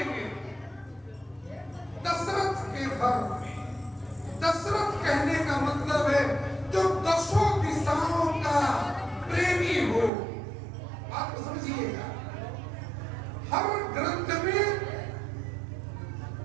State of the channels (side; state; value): left; drops out; at 10.1 s